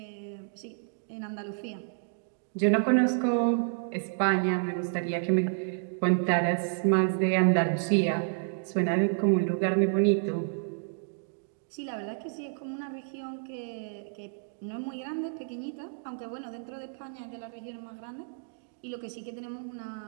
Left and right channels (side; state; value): left; silent; digital silence